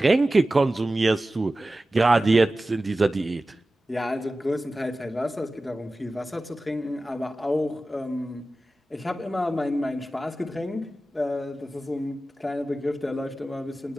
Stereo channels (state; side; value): normal; both; correlation 0.95